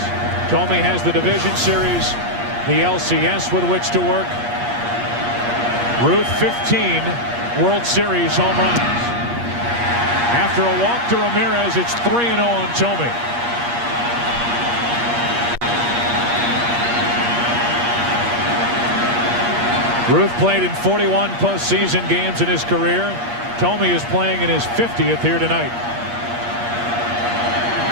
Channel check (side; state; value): left; late; 8.5 ms